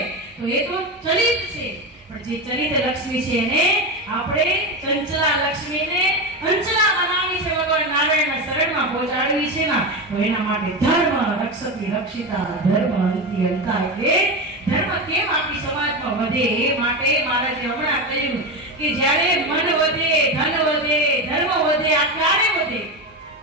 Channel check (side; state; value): both; normal; correlation 0.18